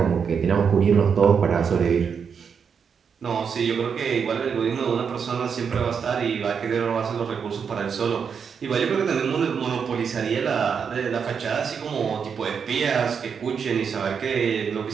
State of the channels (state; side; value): quieter; left; 6.6 dB